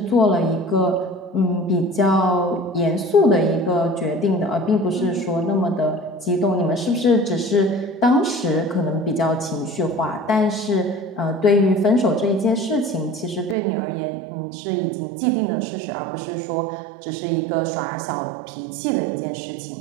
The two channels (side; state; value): left; drops out; at 13.6 s